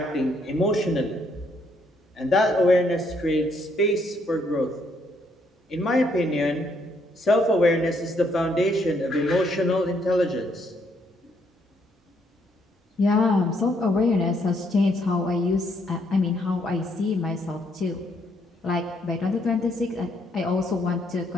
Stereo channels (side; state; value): both; normal; correlation 0.72